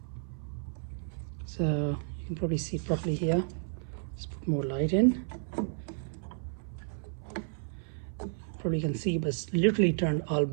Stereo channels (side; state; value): left; silent; 56 dB below the other